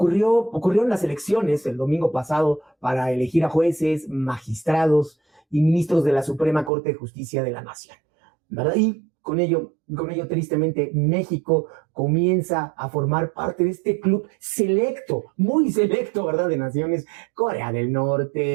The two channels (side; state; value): left; drops out; at 6.7 s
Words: las elecciones el domingo pasado para elegir a jueces, magistrados y ministros de la Suprema Corte de Justicia de la Nación, ¿verdad? Y con ello, tristemente, México comienza a formar parte de este club selecto, muy selecto, ¿verdad? De naciones: Corea del